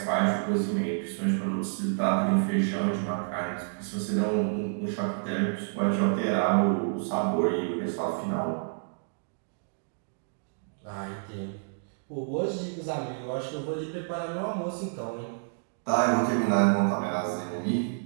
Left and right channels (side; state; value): left; silent; digital silence